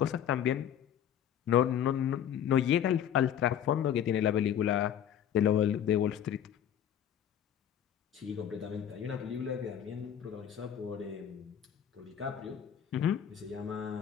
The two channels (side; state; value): right; quieter; 9.6 dB